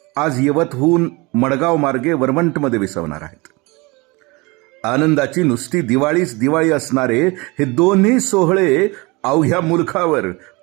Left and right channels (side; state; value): left; quieter; 25.4 dB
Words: आज यवतहून मडगाव मार्गे वरवंटमध्ये विसावणार आहेत. आनंदाची नुसती दिवाळीच दिवाळी असणारे हे दोन्ही सोहळे अवघ्या मुलखावर